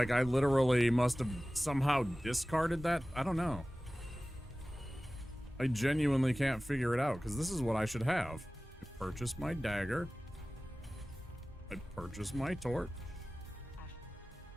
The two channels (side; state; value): both; normal; correlation 0.97